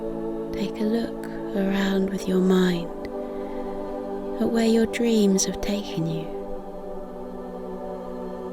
take a look around with your mind at where your dreams have taken you.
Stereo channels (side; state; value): both; identical; correlation 1.00